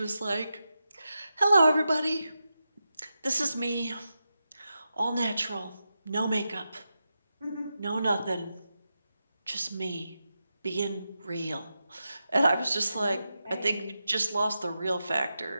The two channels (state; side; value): inverted; both; correlation -0.89